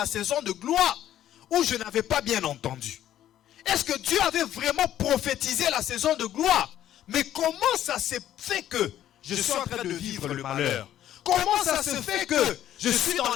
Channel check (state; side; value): quieter; right; 11.9 dB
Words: saison de gloire ou je n'avais pas bien entendu? Est-ce que Dieu avait vraiment prophétisé la saison de gloire? Mais comment ça s'est fait que je suis en train de vivre le malheur? Comment ça se fait que je suis dans